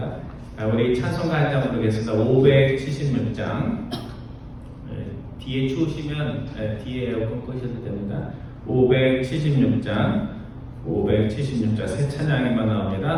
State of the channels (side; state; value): both; identical; correlation 1.00